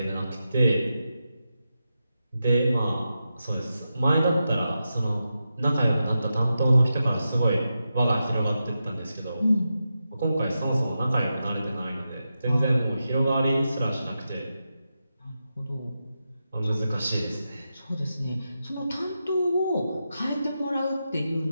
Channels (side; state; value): both; inverted; correlation -0.89